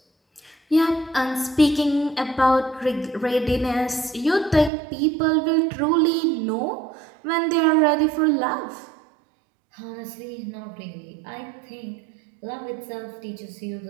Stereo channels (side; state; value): left; drops out; at 4.7 s